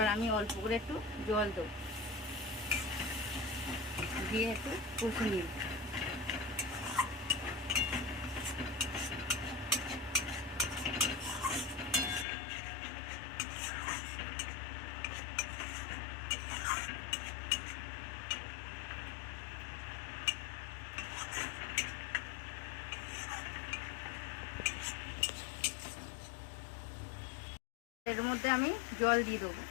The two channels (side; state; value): right; drops out; at 12.2 s